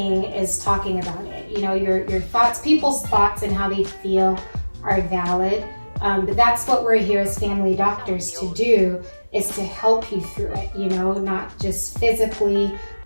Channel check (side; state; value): both; inverted; correlation -1.00